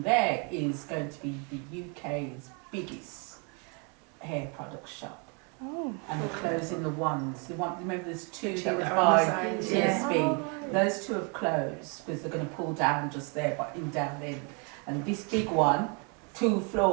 there is going to be the UK's biggest hair product shop. Oh. And they're closing the ones. Remember, there's two that was by TSB. Those two have closed because they're going to pull down just there, but in down there. And this big one, 2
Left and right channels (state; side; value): quieter; left; 35.4 dB